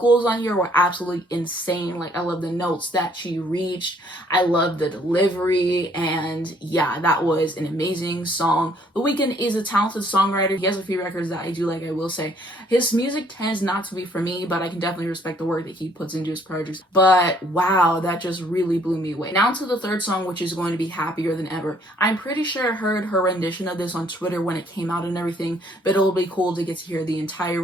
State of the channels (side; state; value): both; normal; correlation 0.63